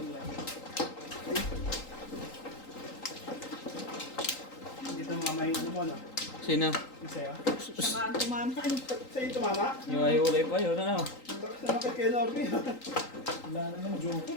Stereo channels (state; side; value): late; right; 3.8 ms